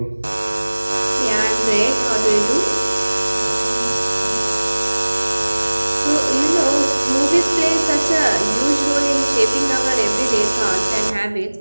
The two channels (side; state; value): both; inverted; correlation -1.00